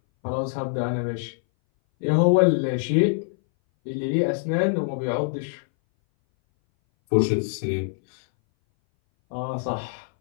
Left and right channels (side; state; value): right; silent; 60 dB below the other